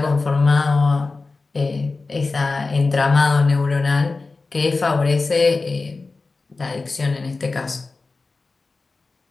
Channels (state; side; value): quieter; right; 3.8 dB